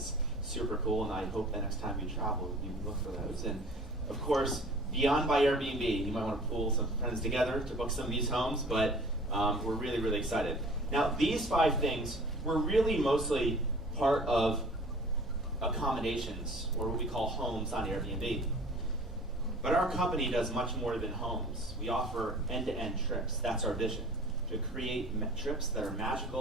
super cool, and I hope the next time you travel, you look for those. And of course, Beyond by Airbnb, you might want to pull some friends together to book some of these homes, but we're really, really excited. Now, these 5 things were really mostly part of accommodations, or what we call homes on Airbnb. But our company does much more than homes. We offer end-to-end trips. That's our vision, to create trips that are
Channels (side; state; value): both; normal; correlation 0.46